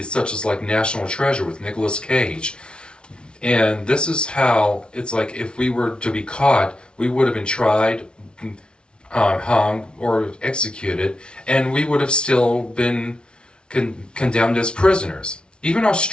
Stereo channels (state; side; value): late; right; 0.056 ms